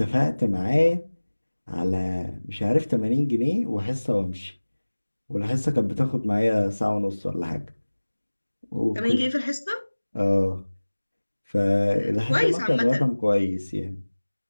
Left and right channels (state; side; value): inverted; both; correlation -1.00